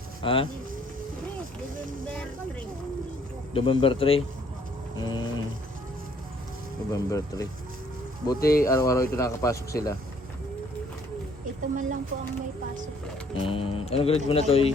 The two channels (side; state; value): both; normal; correlation 0.63